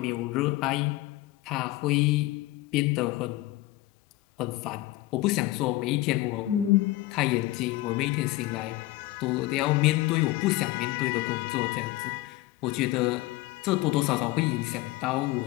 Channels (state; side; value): quieter; right; 17.9 dB